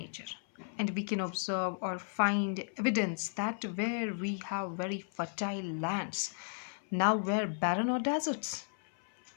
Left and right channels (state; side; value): silent; right; 55 dB below the other